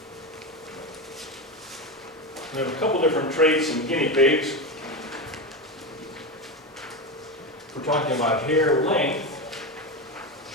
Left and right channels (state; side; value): normal; both; correlation 0.17